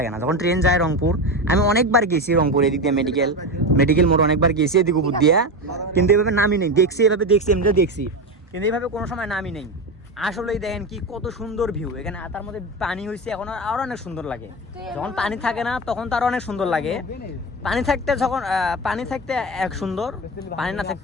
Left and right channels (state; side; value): normal; both; correlation 0.19